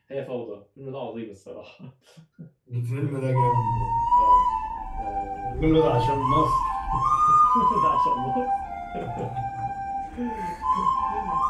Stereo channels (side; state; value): both; identical; correlation 1.00